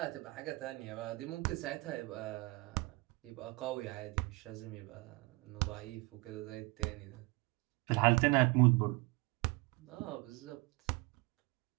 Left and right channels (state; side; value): quieter; left; 25.3 dB